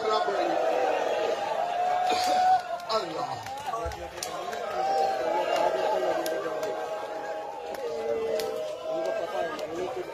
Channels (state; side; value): identical; both; correlation 1.00